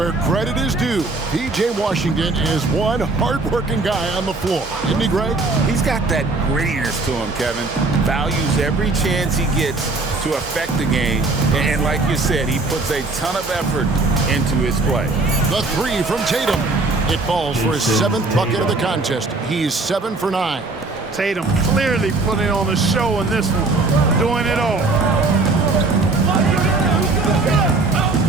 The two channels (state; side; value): quieter; left; 3.4 dB